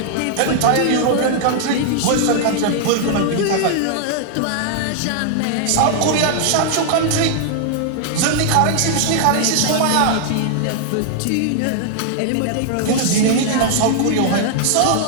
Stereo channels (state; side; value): different; both; correlation 0.00